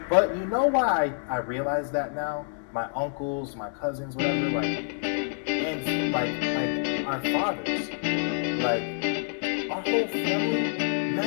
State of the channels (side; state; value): right; silent; digital silence